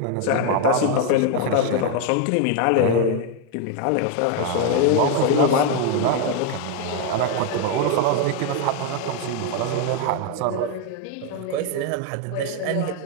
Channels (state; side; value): different; both; correlation 0.01